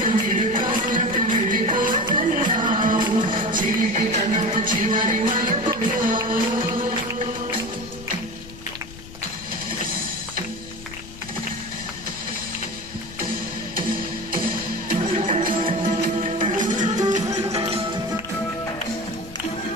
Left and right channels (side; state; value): left; noise; rumble, 16 dB below the sound